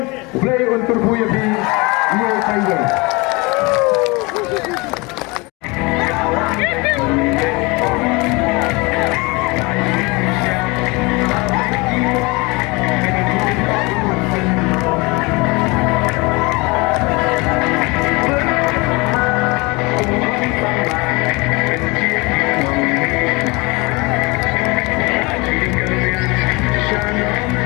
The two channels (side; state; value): right; quieter; 25.9 dB